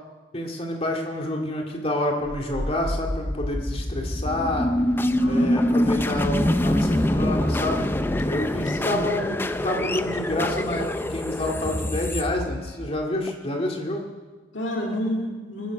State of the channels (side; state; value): both; normal; correlation 0.71